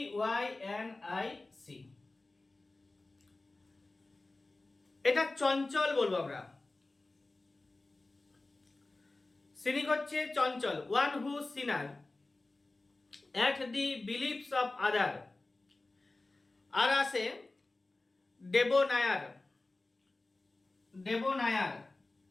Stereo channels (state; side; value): quieter; right; 3.1 dB